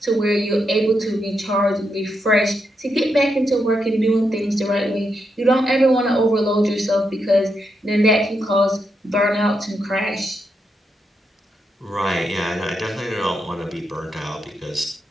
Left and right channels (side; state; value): both; normal; correlation 0.82